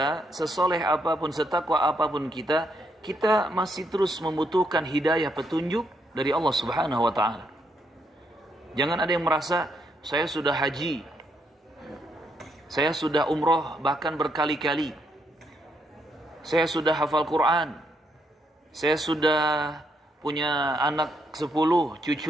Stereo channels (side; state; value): both; normal; correlation 0.76